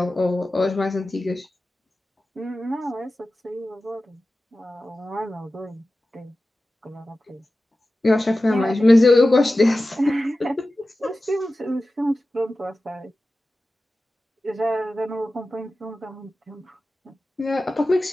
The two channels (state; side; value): normal; both; correlation 0.95